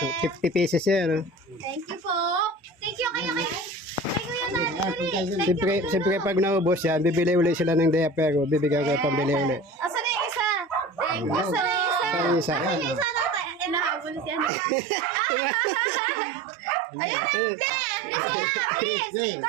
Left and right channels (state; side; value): drops out; left; at 14.5 s